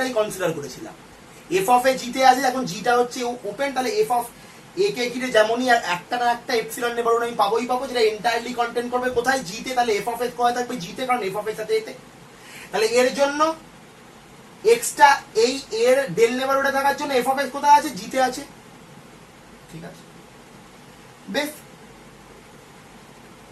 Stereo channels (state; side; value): identical; both; correlation 1.00